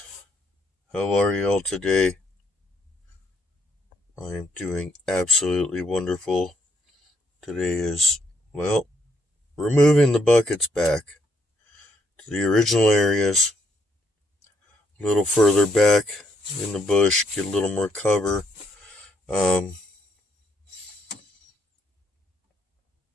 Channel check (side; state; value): both; normal; correlation 0.73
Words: How are y'all today? I am doing absolutely wonderful. Today is, well, we're moving the buckets back to the original areas, a little further back in the bush, get a little more cover. Um,